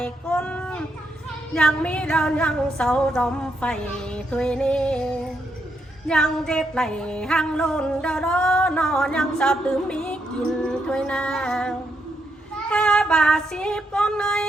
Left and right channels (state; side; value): normal; both; correlation 0.79